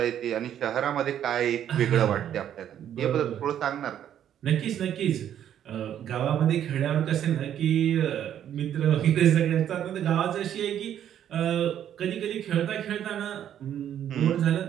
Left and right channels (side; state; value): left; quieter; 10.2 dB